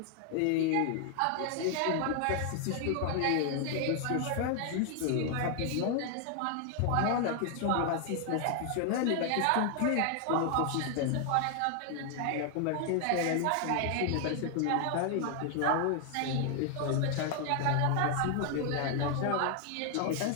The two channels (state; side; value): different; both; correlation 0.00